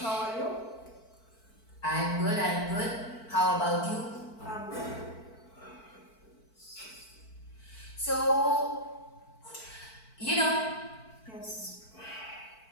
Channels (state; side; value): late; right; 4.5 ms